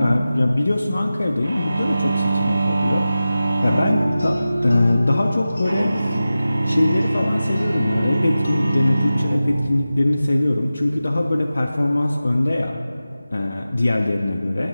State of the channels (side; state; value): both; inverted; correlation -0.94